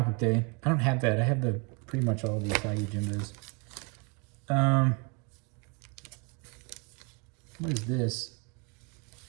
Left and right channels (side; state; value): left; quieter; 33.1 dB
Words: Book Day. I don't have that. I have pretty much all of the Usagi Jimbos. What is this?